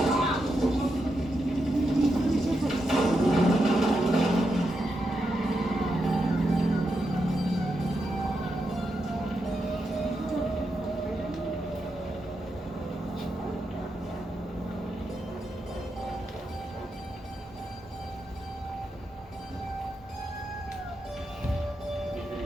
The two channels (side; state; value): both; normal; correlation 0.85